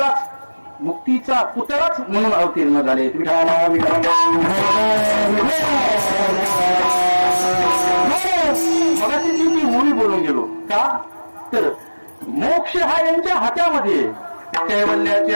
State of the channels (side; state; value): both; inverted; correlation -1.00